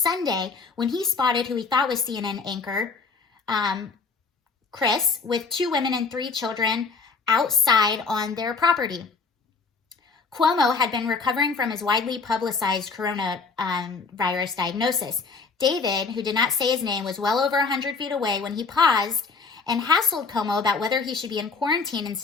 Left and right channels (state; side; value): quieter; right; 4.6 dB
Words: when he spotted who he thought was CNN anchor, Chris, with 2 women and 3 children outside on their property. Cuomo had been recovering from his widely publicized coronavirus diagnosis. David, who did not say his name, was well over 100 feet away when he paused and hassled Cuomo about whether he should be in quarantine